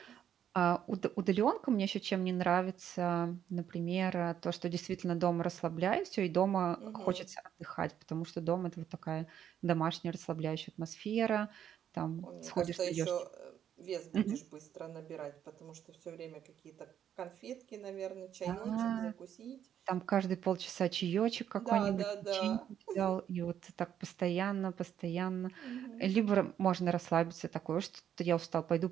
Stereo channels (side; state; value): left; quieter; 9.6 dB